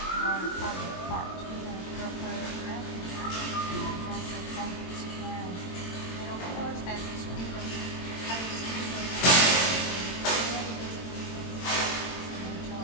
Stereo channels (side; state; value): right; late; 22 ms